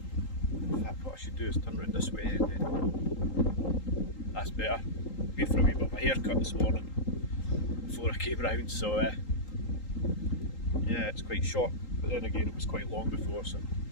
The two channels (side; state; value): right; late; 3.8 ms